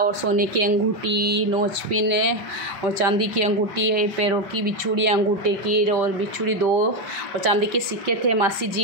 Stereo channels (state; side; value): late; left; 5.2 ms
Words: सोने की अंगूठी, नोच पिन और चांदी की अंगूठी है, पैरों की बिछुड़ी अंगूठे की, और बिछुड़ी 2, और चांदी के सिक्के थे। मासी